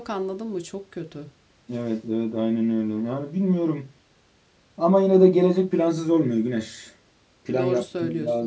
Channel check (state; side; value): identical; both; correlation 1.00